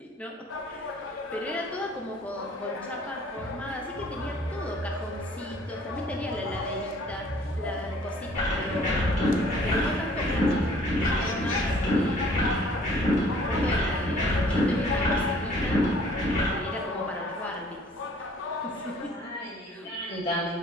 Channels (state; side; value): normal; both; correlation 0.56